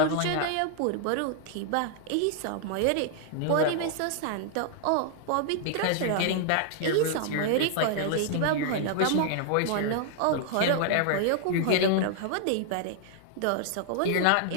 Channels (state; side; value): different; both; correlation -0.01